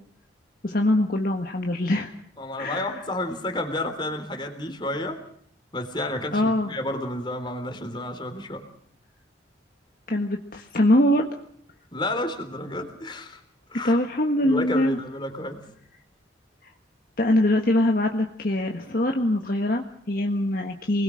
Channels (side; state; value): both; normal; correlation 0.62